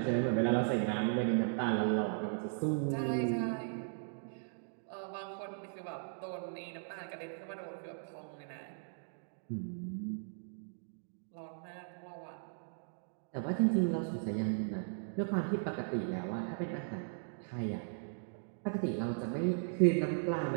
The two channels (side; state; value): left; silent; digital silence